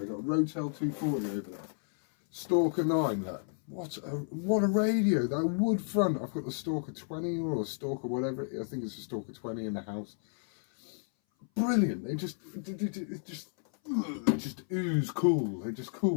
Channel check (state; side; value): silent; right; 57 dB below the other